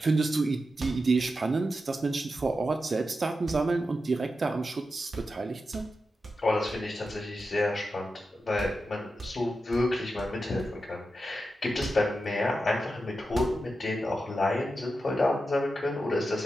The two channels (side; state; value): both; normal; correlation 0.90